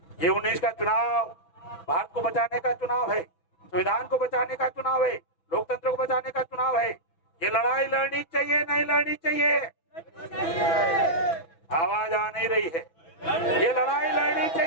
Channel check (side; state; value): right; late; 6.1 ms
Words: ये 19 का चुनाव भारत को बचाने का चुनाव है, संविधान को बचाने का चुनाव है, लोकतंत्र को बचाने का चुनाव है। ये लड़ाई लड़नी चाहिए, नहीं लड़नी चाहिए? आवाज आ नहीं रही है। ये लड़ाई लड़नी